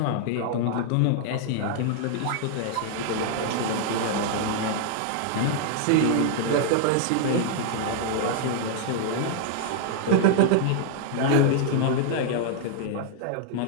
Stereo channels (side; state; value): both; different; correlation -0.01